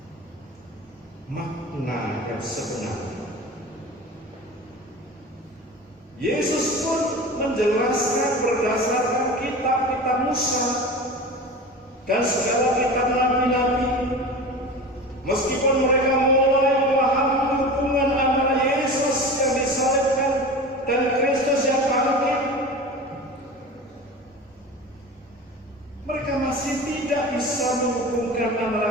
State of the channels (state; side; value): normal; both; correlation 0.32